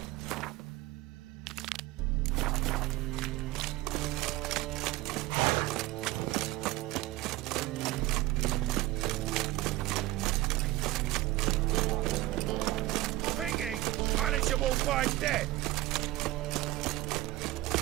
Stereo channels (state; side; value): quieter; left; 17.6 dB